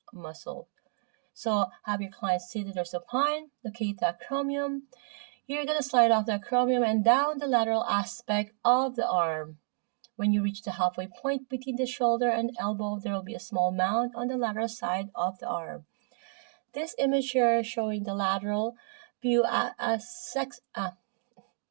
muscle. So have your client seated or supine, locate the acromion. You're going to slide off the acromion and down the lateral aspect of the arm. When you reach the halfway point between the shoulder and elbow, there will be a small mound on the lateral side of the arm. This image here is showing the lateral view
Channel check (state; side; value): silent; left; digital silence